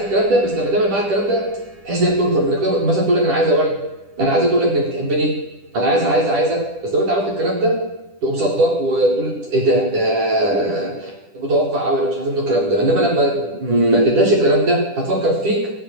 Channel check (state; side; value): late; left; 10 ms